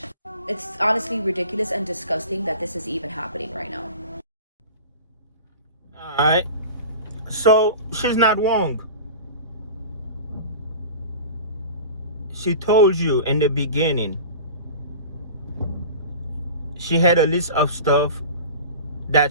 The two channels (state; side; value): inverted; both; correlation -0.36